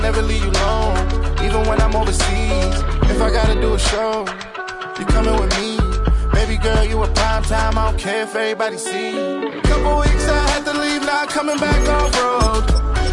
never leave you alone, even when I'm overseas. If I gotta do a show, you coming with me. Baby girl, you a prime time. I don't care if everybody see. Couple weeks I had to leave, now coming back off road.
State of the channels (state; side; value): identical; both; correlation 1.00